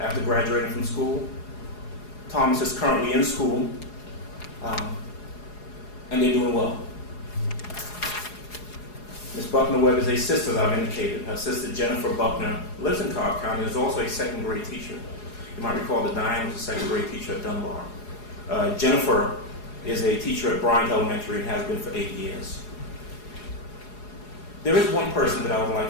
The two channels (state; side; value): late; right; 4.8 ms